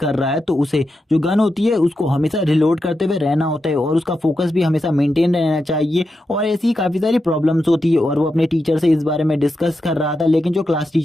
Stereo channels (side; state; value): both; normal; correlation 0.87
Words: रहा है तो उसे जो गन होती है उसको हमेशा रिलोड करते हुए रहना होता है और उसका फोकस भी हमेशा मेंटेन रहना चाहिए। और ऐसी काफी सारी प्रॉब्लम्स होती है और वो अपने टीचर से इस बारे में डिस्कस कर रहा था, लेकिन जो क्लास